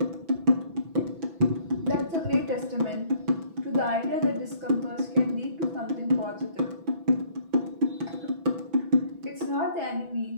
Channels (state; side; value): late; left; 6.1 ms